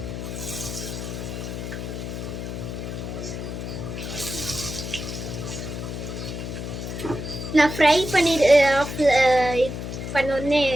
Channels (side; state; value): left; noise; hum, 6 dB below the sound